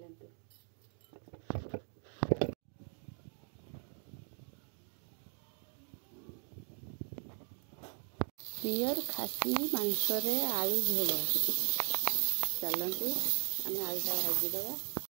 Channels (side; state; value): left; quieter; 30.7 dB